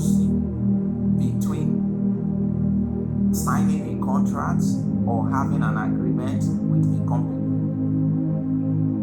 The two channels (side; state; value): both; identical; correlation 1.00